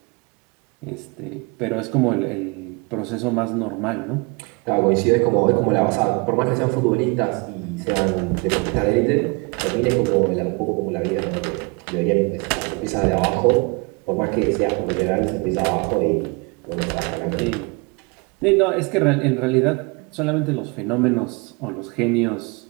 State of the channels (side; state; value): left; quieter; 29.9 dB